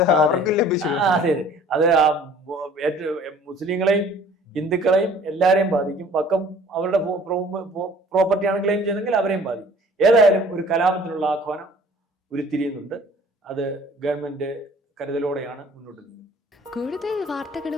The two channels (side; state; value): both; normal; correlation 0.51